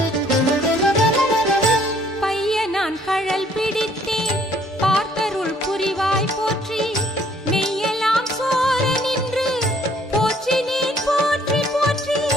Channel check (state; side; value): normal; both; correlation 0.62